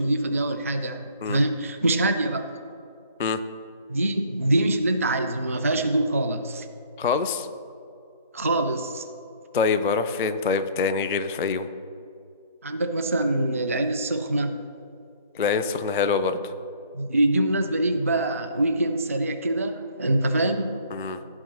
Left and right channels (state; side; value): inverted; both; correlation -0.57